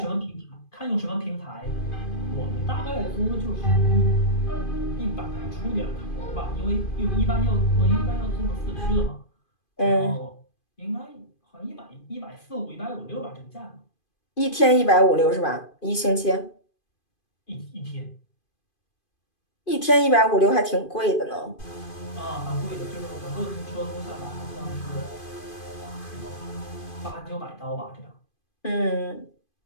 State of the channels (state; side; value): late; right; 2.5 ms